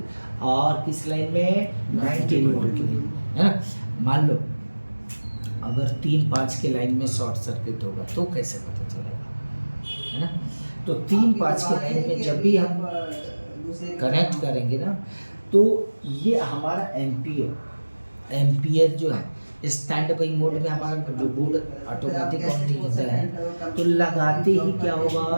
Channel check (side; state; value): both; inverted; correlation -1.00